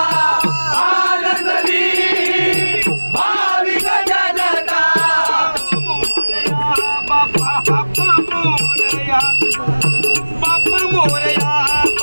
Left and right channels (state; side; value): inverted; both; correlation -1.00